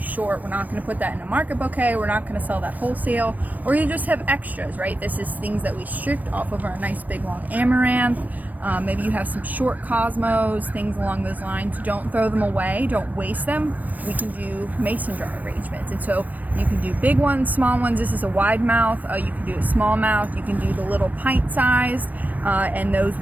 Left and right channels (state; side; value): late; left; 0.081 ms